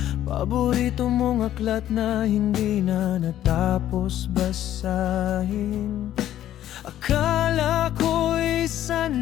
paborito mong aklat na hindi na natapos basahin. Akala ko'y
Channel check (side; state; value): right; quieter; 12.2 dB